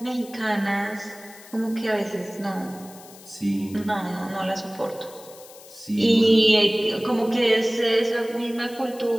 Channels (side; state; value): left; noise; hiss, 20 dB below the sound